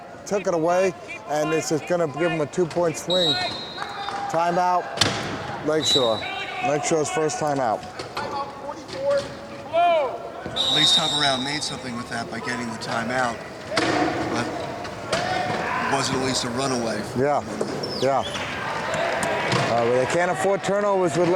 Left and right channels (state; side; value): identical; both; correlation 1.00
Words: took it away. And this is going to give him a 2-point swing. Timeout, Lakeshore. Lakeshore's first timeout. At least Cover-Round made something with that by getting the timeout. But it wasn't at least a runaway. Yeah. But they can't afford turnovers with